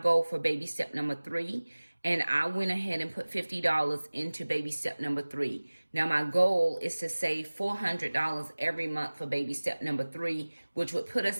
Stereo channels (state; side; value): inverted; both; correlation -1.00